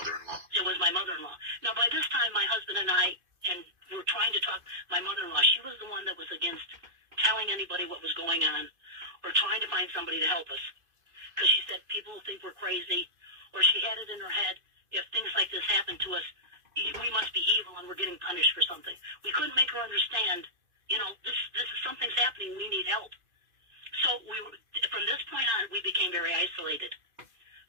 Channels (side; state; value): left; late; 2.5 ms